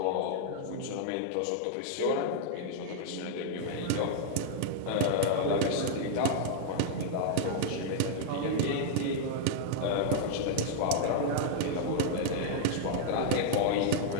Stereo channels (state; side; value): different; both; correlation -0.01